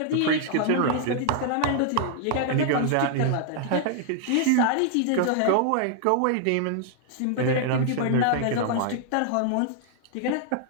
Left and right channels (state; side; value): different; both; correlation 0.00